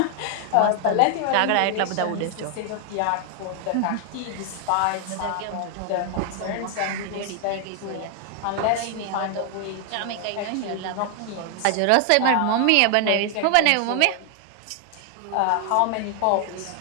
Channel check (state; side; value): different; both; correlation 0.00